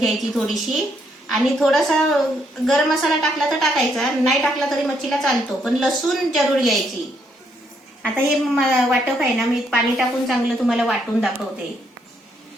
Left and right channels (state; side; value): normal; both; correlation 0.74